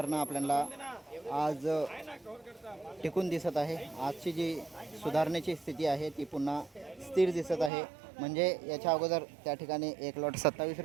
आपल्याला आज टिकून दिसत आहे। आजची जी सुधारणेची स्थिती आहे ती पुन्हा स्थिर दिसत आहे। म्हणजे याच्या अगोदर त्या ठिकाणी एक लॉट 27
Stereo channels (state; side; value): drops out; left; at 7.7 s